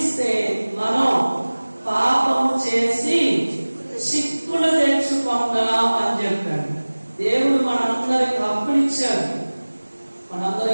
మనం పాపము చేసి చిక్కులు తెచ్చుకున్నాం అని చెప్పాడు. దేవుడు మనందరికి హక్కులు ఇచ్చాడు. మనందరం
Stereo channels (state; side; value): inverted; both; correlation -1.00